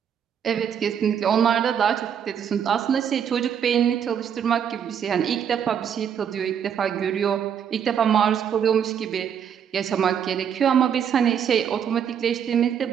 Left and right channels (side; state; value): left; quieter; 8.3 dB